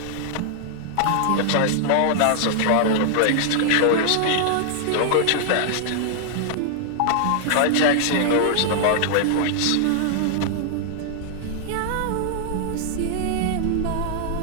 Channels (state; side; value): different; both; correlation -0.01